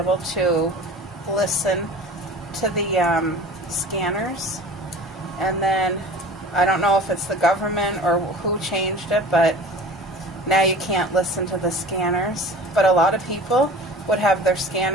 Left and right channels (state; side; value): normal; both; correlation 0.40